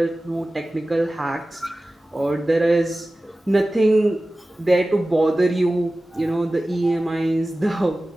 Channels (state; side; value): normal; both; correlation 0.96